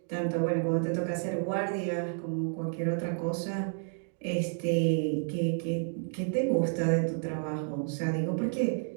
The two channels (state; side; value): silent; left; 57 dB below the other